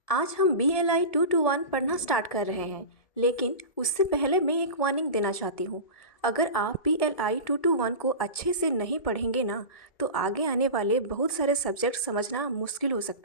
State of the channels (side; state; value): right; late; 1.7 ms